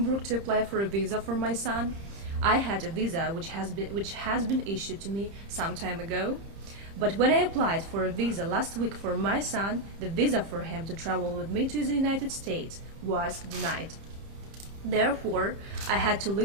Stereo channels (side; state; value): left; late; 30 ms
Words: to apply for a visa for my son. I had a visa which has been issued to me some time ago. But when I applied for a visa last week for my son, the visa for him to travel with me to the United States was denied. Therefore, I had to